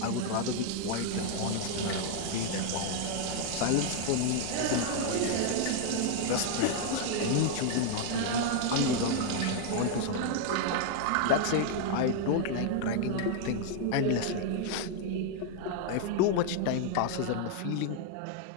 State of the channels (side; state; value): both; different; correlation 0.00